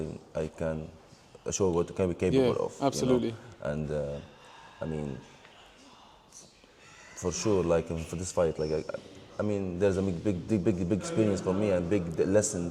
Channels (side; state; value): both; identical; correlation 1.00